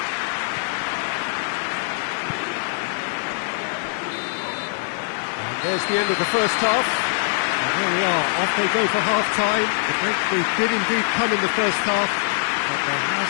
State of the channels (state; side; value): silent; right; digital silence